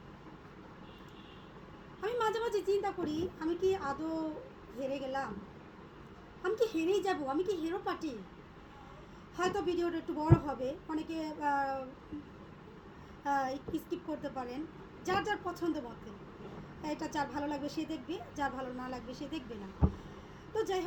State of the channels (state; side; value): identical; both; correlation 1.00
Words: আমি মাঝে মাঝে চিন্তা করি আমি কি আদৌ হেরে গেলাম, আমি কি হেরেই যাব, আমি কি হেরো পার্টি। হয়তো ভিডিওটা একটু বড় হবে, অনেকে স্কিপ করতে পারেন, যার যার পছন্দ মতে। এটা যার ভালো লাগবে সে দেখবে, যার ভালো না লাগবে সে দেখবে না। তো যাই